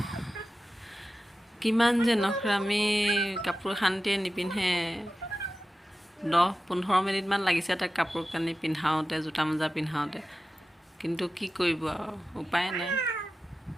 কিমান যে নখৰামি, কাপোৰ শান্তিয়ে নিপিন্ধে। 10-15 মিনিটমান লাগিছে তাক কাপোৰ কানি পিন্ধাওঁতে, জোতা মোজা পিন্ধাওঁতে। কিন্তু কি কৰিব আৰু, উপায় নাই।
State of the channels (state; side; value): normal; both; correlation 0.93